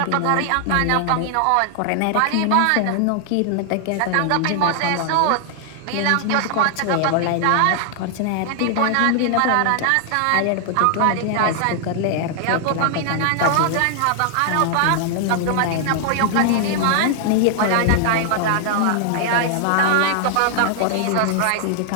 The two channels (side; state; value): both; different; correlation 0.00